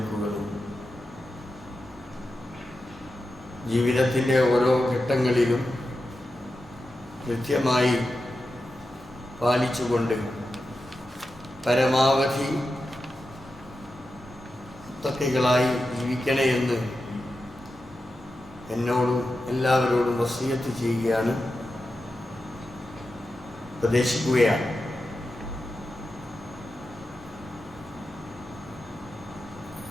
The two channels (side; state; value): both; normal; correlation 0.90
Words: ജീവിതത്തിൻ്റെ ഓരോ ഘട്ടങ്ങളിലും കൃത്യമായി പാലിച്ചുകൊണ്ട് പരമാവധി മുത്തഖികളായി ജീവിക്കണേ എന്ന് എന്നോടും എല്ലാവരോടും വസിയത്ത് ചെയ്യുകയാണ്, ഉപദേശിക്കുകയാണ്.